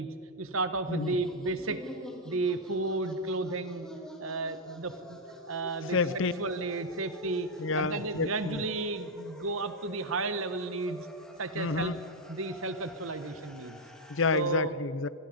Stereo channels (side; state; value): both; normal; correlation -0.01